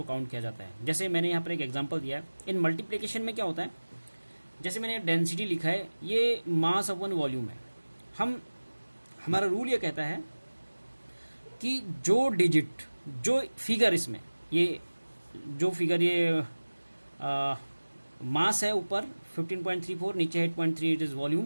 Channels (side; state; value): both; inverted; correlation -1.00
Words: काउंट किया जाता है। जैसे मैंने यहाँ पर एक एग्जांपल दिया है, इन मल्टीप्लिकेशन में क्या होता है, जैसे मैंने डेंसिटी लिखा है, ये मास अपॉन वॉल्यूम है। हमारा रूल ये कहता है कि जो डिजिट, जो फिगर इसमें, ये जो फिगर ये मास है ऊपर 15.34, नीचे 8.3, इट इज़